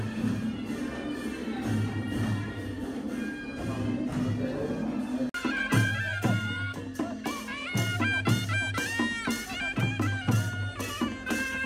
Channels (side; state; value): both; identical; correlation 1.00